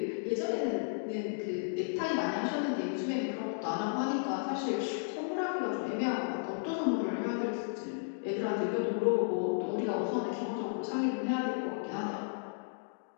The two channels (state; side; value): silent; right; digital silence